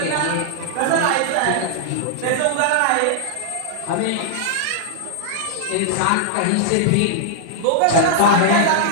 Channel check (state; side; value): different; both; correlation -0.01